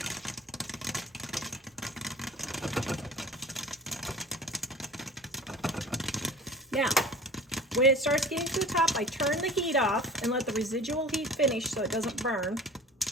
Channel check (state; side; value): normal; both; correlation 0.40